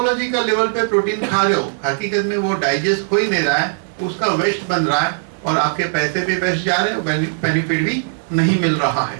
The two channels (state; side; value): silent; left; 65 dB below the other